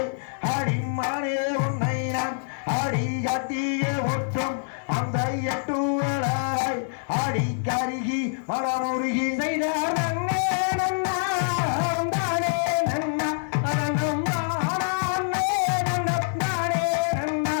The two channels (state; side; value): silent; right; 59 dB below the other